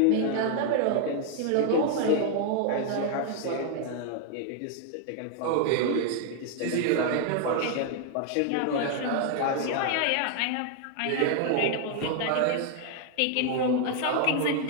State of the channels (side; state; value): both; different; correlation 0.00